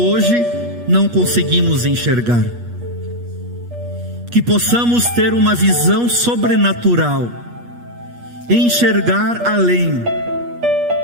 não conseguimos enxergar. Que possamos ter uma visão sobrenatural, enxergar além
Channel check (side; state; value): left; late; 8.4 ms